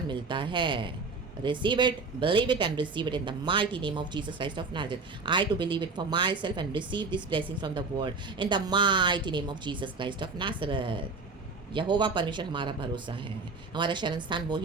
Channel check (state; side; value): quieter; left; 4.1 dB